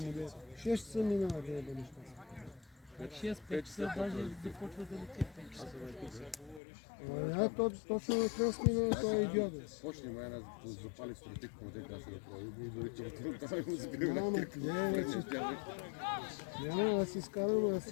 му да. 6 часа минава да еба неща. 6-5 часа даже започва да лети 5 часа. Точно от нас минава този идиот. Почни май да запали стратик, му те каза да прави. И дори това му забива на Няма, кирка. не, вече. Няма, аз си скарам, аз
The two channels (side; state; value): right; drops out; at 6.6 s